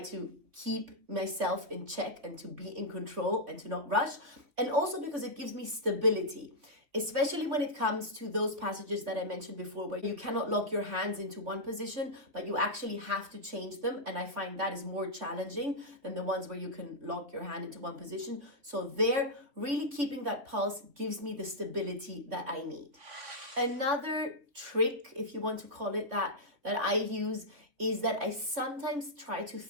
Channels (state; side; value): late; left; 3.7 ms